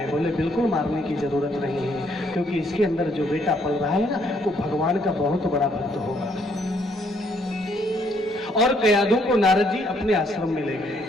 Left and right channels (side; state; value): both; normal; correlation 0.69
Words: बोले बिल्कुल मारने की जरूरत नहीं है, क्योंकि इसके अंदर जो बेटा पल रहा है ना, वो भगवान का बहुत बड़ा भक्त होगा। और कयाधु को नारद जी अपने आश्रम में ले गए।